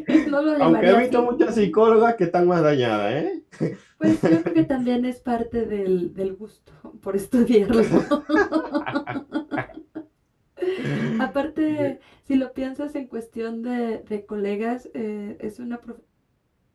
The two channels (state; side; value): identical; both; correlation 1.00